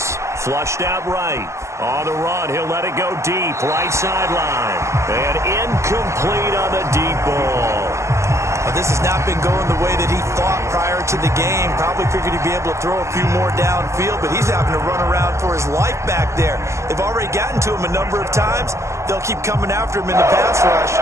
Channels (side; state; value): left; late; 0.14 ms